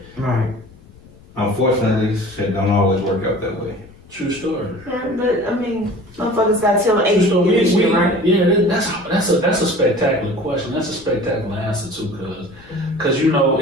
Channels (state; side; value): noise; left; rumble, 24 dB below the sound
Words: Right. unfortunately, shit don't always work out that way. True story. Yeah, but I mean, motherfuckers got till age to So get this shit right. that's a spectacular question. That's a spectacular answer too, because you know